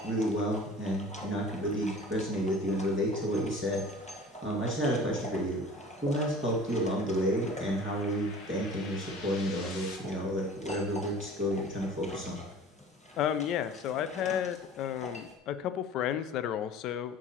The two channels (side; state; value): both; normal; correlation 0.43